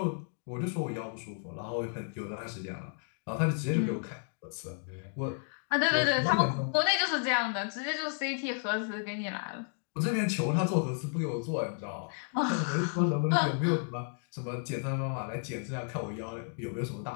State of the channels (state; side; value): silent; right; 56 dB below the other